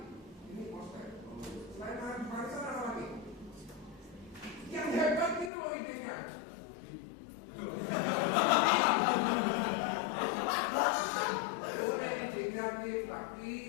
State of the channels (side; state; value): right; drops out; at 5.5 s